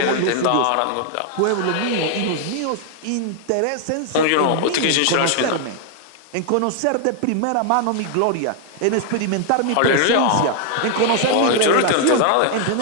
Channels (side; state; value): both; different; correlation 0.00